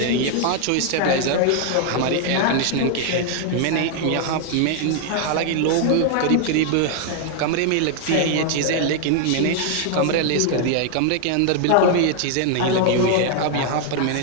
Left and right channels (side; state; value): both; different; correlation 0.00